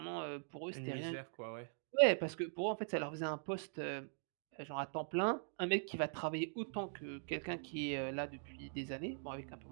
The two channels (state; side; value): silent; left; digital silence